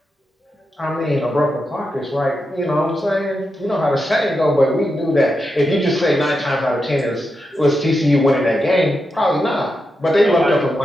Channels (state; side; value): normal; both; correlation 0.87